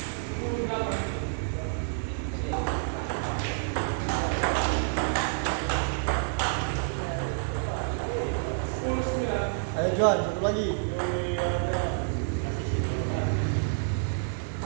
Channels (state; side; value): silent; left; digital silence